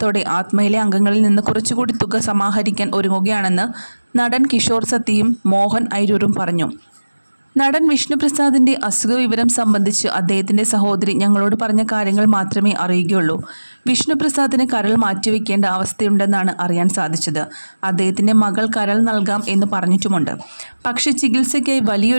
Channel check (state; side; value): inverted; both; correlation -1.00